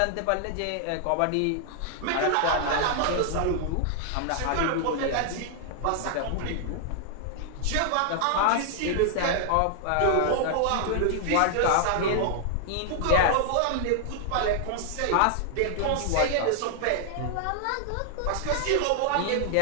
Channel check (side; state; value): both; different; correlation 0.00